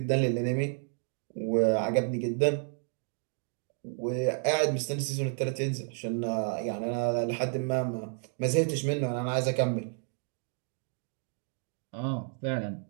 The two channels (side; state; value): left; silent; 57 dB below the other